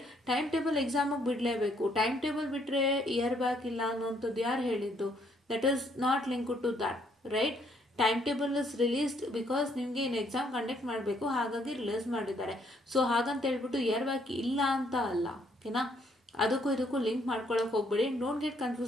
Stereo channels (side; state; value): both; normal; correlation 0.68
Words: Time table ಎಕ್ಸಾಮಿಗೆ ಬಿಡಲೇಬೇಕು. ಟೈಮ್ ಟೇಬಲ್ ಬಿಟ್ಟರೆ ಇಯರ್ ಬ್ಯಾಕ್ ಇಲ್ಲ ಅನ್ನೋಂಥದ್ದು ಯಾರು ಹೇಳಿದ್ದು? That is not link to that, right. Time table is released because ನಿಮಗೆ ಇನ್ನು ಎಕ್ಸಾಮ್ ಕಂಡಕ್ಟ್ ಮಾಡಬೇಕು, ಹಾಗಾಗಿ ರಿಲೀಸ್ ಮಾಡಿದ್ದಾರೆ. ಸೊ ಹಾಗಂತ ಹೇಳ್ಬಿಟ್ಟು ಇಯರ್ ಬ್ಯಾಕ್ ಇಲ್ಲ ಅಂತ ಅಲ್ಲ, ಓಕೆನಾ. ಅದಕ್ಕೂ ಇದಕ್ಕೂ ಲಿಂಕ್ ಮಾಡ್ಕೊಳಕ್ಕೆ ಹೋಗ್ಬೇಡಿ. Don't get